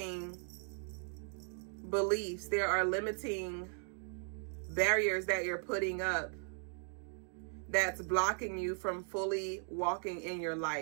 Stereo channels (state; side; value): silent; left; 53 dB below the other